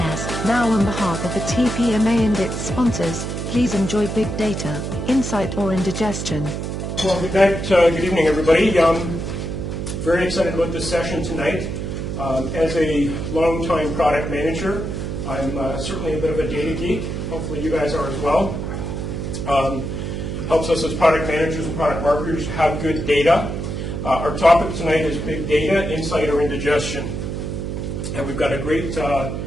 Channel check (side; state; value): right; noise; hum, 4 dB below the sound